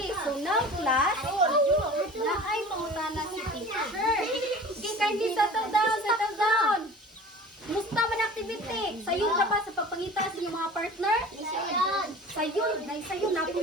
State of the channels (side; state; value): both; normal; correlation 0.41